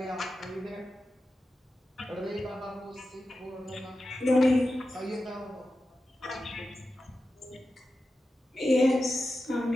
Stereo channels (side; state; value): both; normal; correlation 0.92